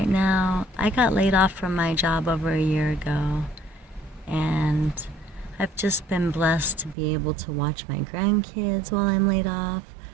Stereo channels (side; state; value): left; drops out; at 7.0 s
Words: now. I got laid off from my job over a year ago, and I've just been blessed to be able to watch my grandkids while I'm laid off,